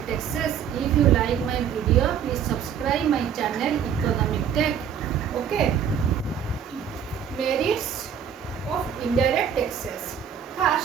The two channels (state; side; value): quieter; left; 8.3 dB